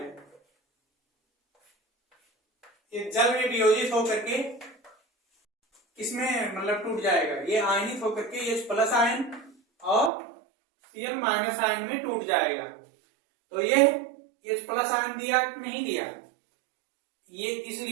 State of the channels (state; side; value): drops out; left; at 10.1 s